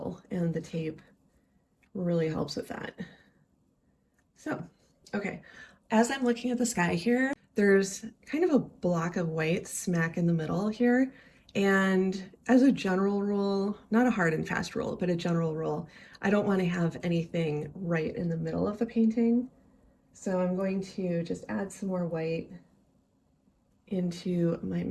and the tape really helps with that. So, okay, as I'm looking at the sky here, there's kind of a block of white smack in the middle here. And as a general rule, not a hard and fast rule, but a general rule, I don't want to have anything right in the middle of the painting. So I'm going to just add some more white into my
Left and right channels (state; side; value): identical; both; correlation 1.00